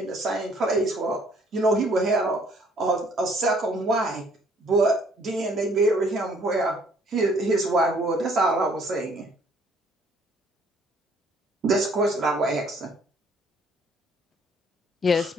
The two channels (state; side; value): normal; both; correlation 0.61